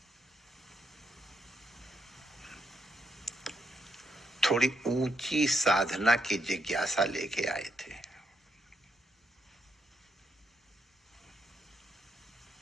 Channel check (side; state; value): both; normal; correlation 0.78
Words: थोड़ी ऊंची साधना की जिज्ञासा लेके आए थे।